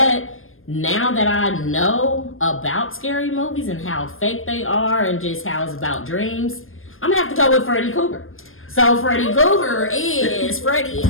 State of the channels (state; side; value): late; right; 0.60 ms